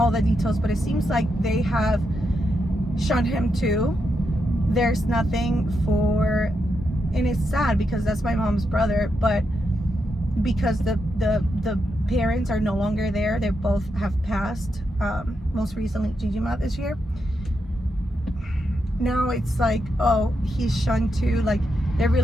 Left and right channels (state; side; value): normal; both; correlation 0.84